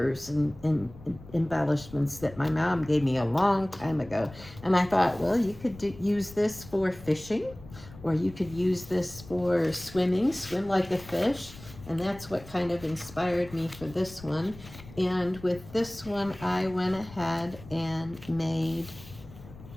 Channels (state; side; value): noise; left; rumble, 18 dB below the sound